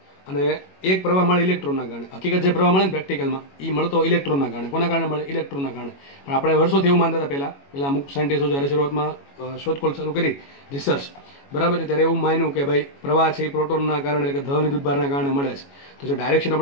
અને એક પ્રવાહ મળે ઇલેક્ટ્રોનના કારણે. હકીકત જે પ્રવાહ મળે ને પ્રેક્ટિકલમાં, એ મળતો ઇલેક્ટ્રોનના કારણે. કોના કારણે મળે? ઇલેક્ટ્રોનના કારણે. પણ આપણે વર્ષોથી એવું માનતા હતા પહેલા અમુક સાયન્ટિસ્ટો જ્યારે શરૂઆતમાં શોધખોળ ચાલુ કરી, રિસર્ચ, બરાબર છે, ત્યારે એવું માન્યું કે ભાઈ પ્રવાહ છે એ પ્રોટોનના કારણે, એટલે કે ધન વિદ્યુતભારના કારણે મળે છે. તો જે ડાયરેક્શન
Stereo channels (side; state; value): right; late; 21 ms